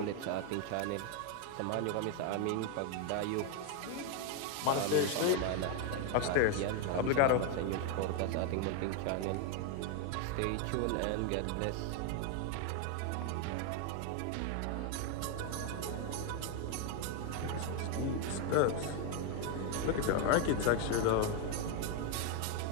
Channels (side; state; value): both; different; correlation 0.01